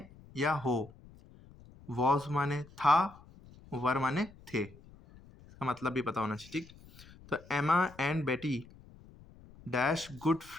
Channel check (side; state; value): left; noise; rumble, 22 dB below the sound